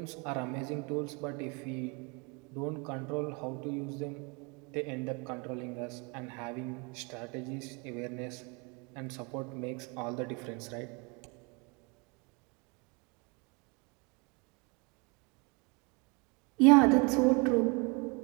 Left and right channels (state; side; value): quieter; left; 30.0 dB